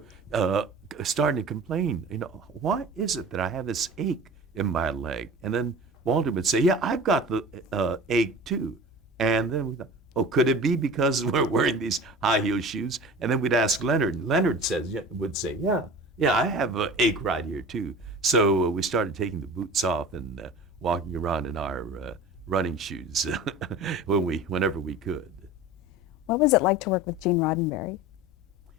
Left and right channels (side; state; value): both; normal; correlation 0.37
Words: starting to complain, why is it that I have this ache in my leg? And then Walter would say, "Yeah, I've got the ache too." And then we thought, "Oh, could it be because we're wearing these high heel shoes?" And then we'd ask Leonard, and Leonard would say, "Yeah, yeah, I have an ache right here too." So we started taking the boots off and walking around in our running shoes whenever we could. What was it like to work with Gene Roddenberry?